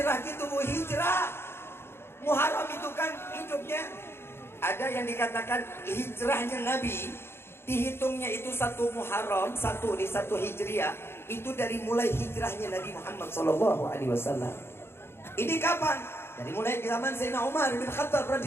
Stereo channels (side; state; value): right; late; 0.12 ms